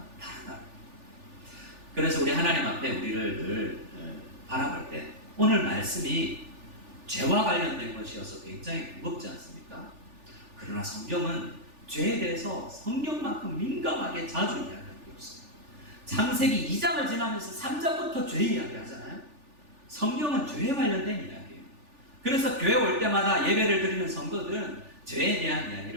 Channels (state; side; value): late; left; 3.4 ms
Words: 다르다. 그래서 우리 하나님 앞에 우리를 늘 바라볼 때 오늘 말씀이 죄와 관련된 것이어서 굉장히 무겁지 않습니까? 그러나 성경은 죄에 대해서 성경만큼 민감하게 자주 이야기하는 게 없어요. 창세기 2장을 지나면서 3장부터 죄 이야기하잖아요. 성경은 죄에 관련된 이야기예요. 그래서 교회 올 때마다 예배를 드리는 성도들은 죄에 대한